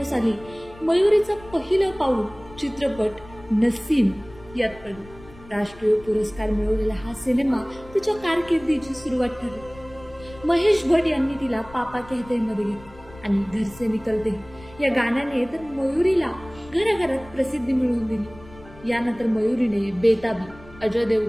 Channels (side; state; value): left; noise; rumble, 21 dB below the sound